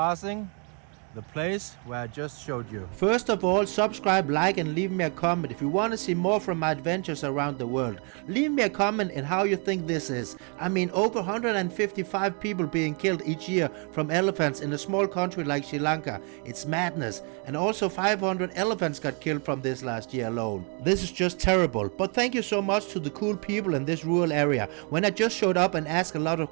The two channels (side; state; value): left; quieter; 36.3 dB